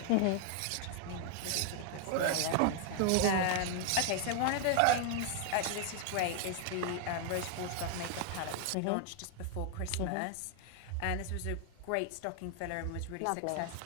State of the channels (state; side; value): different; both; correlation 0.00